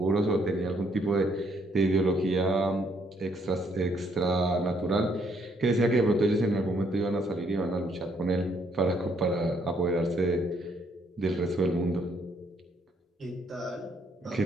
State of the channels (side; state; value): both; normal; correlation 0.70